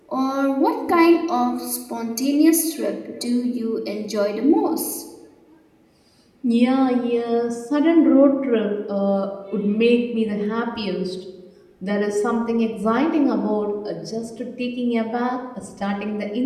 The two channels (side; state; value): both; identical; correlation 1.00